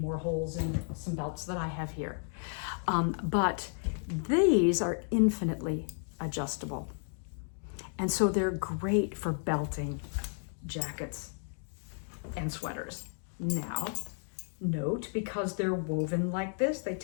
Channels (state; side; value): silent; right; 56 dB below the other